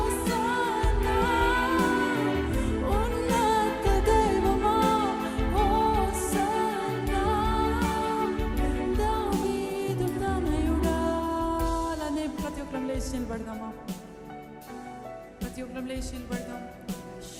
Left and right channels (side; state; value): both; identical; correlation 1.00